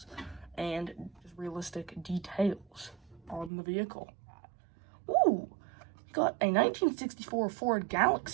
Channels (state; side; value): drops out; left; at 3.5 s